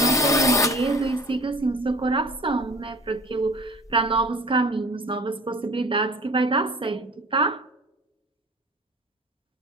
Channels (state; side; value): normal; both; correlation 0.43